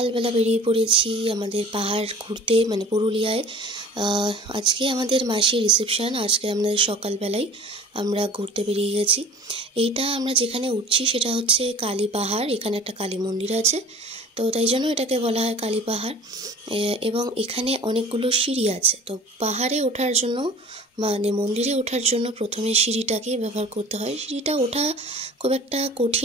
বেরিয়ে পড়েছি আমাদের পাহাড় ঘুরতে, মানে পুরুলিয়ায়। আজকে আমাদের মাসির রিসেপশন। আজকে আমাদের সকালবেলায় আমরা ঘুরতে বেরিয়ে গেছি। এইটা আমরা যেখানে উঠছি সেটা হচ্ছে কালী পাহাড়। এখানে একটা কালী মন্দির আছে, তো তাই জন্য এটাকে বলা হয় কালী পাহাড়। এবং এখানে অনেকগুলো সিঁড়ি আছে। তো পাহাড়ে ওঠার জন্য, মানে মন্দিরে ওঠার জন্য প্রথমে সিঁড়িটাকে ব্যবহার করতে হয়। সিঁড়িটা ওঠা খুব একটা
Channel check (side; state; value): both; normal; correlation 0.43